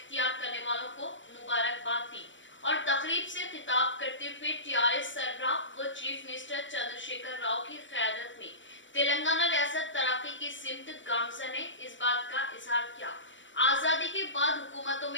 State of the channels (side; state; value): right; late; 0.55 ms